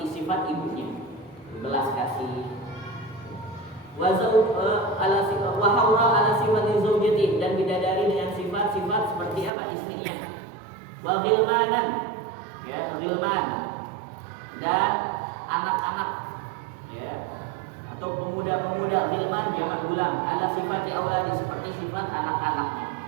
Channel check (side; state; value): left; drops out; at 9.5 s